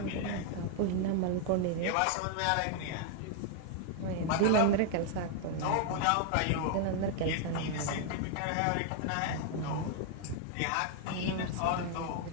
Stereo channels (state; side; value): different; both; correlation 0.00